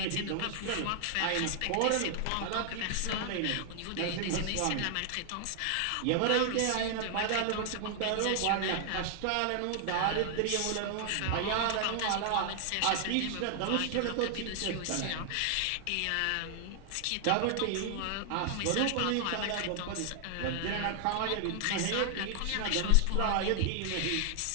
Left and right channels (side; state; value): both; different; correlation 0.00